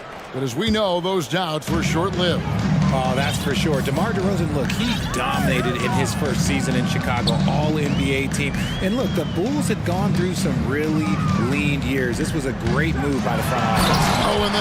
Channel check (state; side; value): identical; both; correlation 1.00